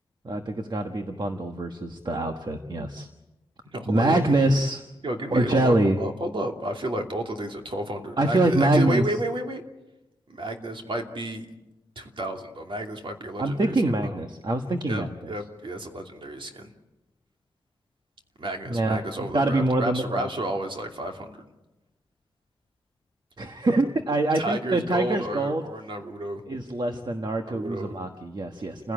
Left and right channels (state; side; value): normal; both; correlation 0.74